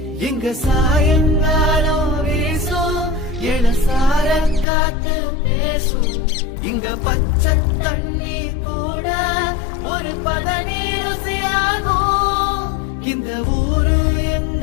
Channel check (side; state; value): right; drops out; at 4.7 s